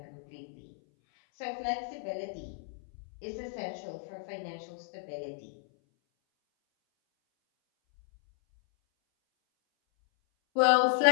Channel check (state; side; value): silent; right; 56 dB below the other